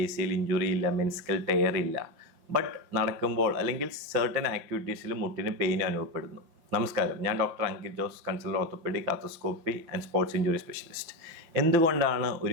ACL ഇഞ്ചുറി ഇല്ല, മെനിസ്കൽ ടയർ ഇല്ല. ബട്ട് നടക്കുമ്പോൾ അല്ലെങ്കിൽ സർട്ടൻ ആക്ടിവിറ്റീസിൽ മുട്ടിന് പെയിൻ അനുഭവപ്പെടുന്നു. നമസ്കാരം, ഞാൻ doctor Ankit Jose, consultant orthopaedic, arthroscopy and sports injury specialist. എന്തുകൊണ്ടാണ്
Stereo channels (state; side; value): late; left; 6.0 ms